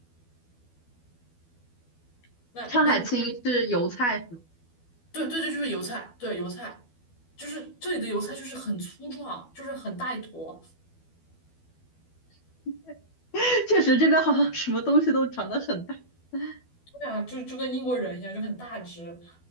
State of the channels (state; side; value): late; right; 12 ms